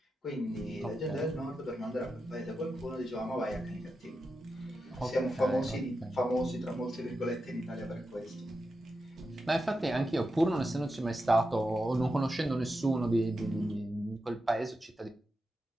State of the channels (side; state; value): both; normal; correlation 0.89